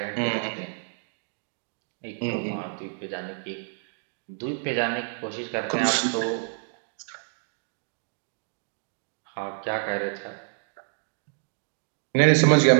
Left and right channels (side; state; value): left; silent; digital silence